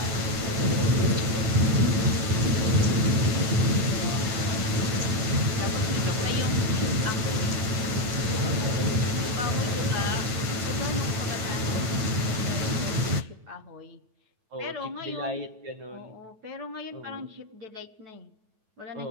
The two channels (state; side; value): late; left; 9.2 ms